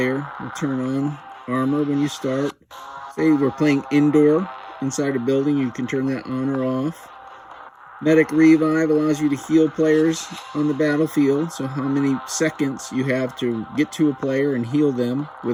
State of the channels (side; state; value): both; identical; correlation 1.00